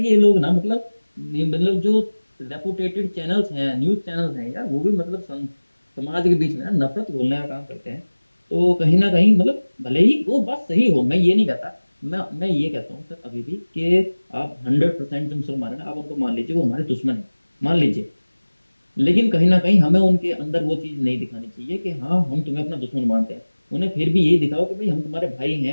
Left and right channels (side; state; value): both; inverted; correlation -1.00